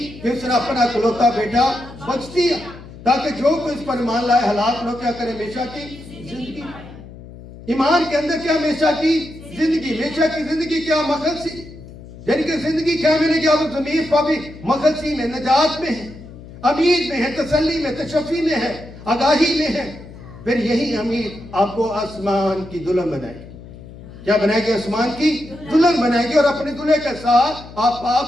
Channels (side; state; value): left; noise; hum, 17 dB below the sound